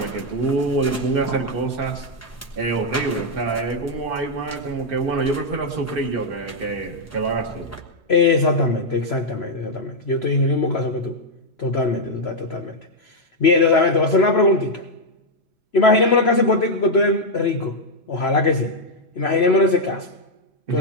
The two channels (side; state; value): both; normal; correlation -0.02